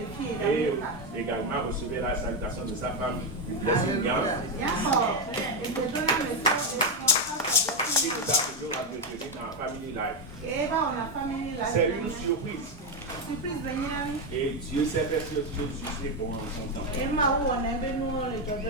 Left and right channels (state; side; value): normal; both; correlation 0.07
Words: Et également recevez la salutation de sa femme, du blessing. qui nous a toujours entretenus dans Family Life. C'est une surprise. Et Dieu sait faire ce que Dieu est bon en son temps.